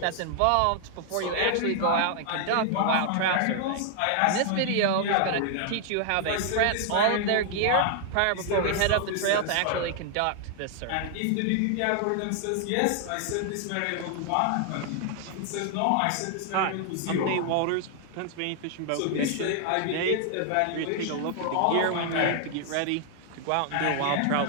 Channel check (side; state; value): both; different; correlation 0.00